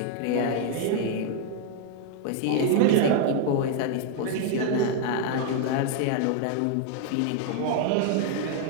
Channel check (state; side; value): different; both; correlation 0.00